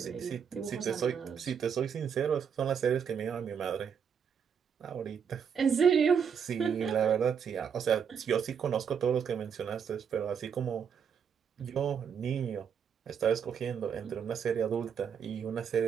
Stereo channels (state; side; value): quieter; left; 7.3 dB